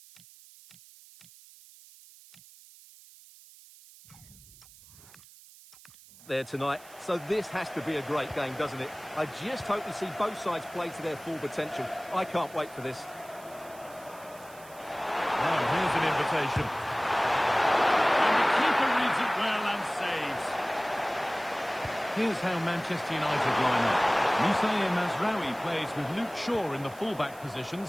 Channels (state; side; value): noise; right; hiss, 22 dB below the sound